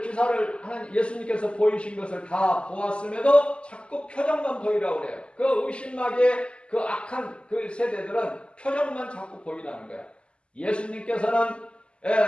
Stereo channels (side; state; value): right; late; 0.053 ms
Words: 기사를 예수님께서 보이신 것을 다 보았음에도 자꾸 표정만 보이라고 그래요. 그 의심하게 그 악한 그 세대들은 표정만 자꾸 보이라는 거야. 예수님께서는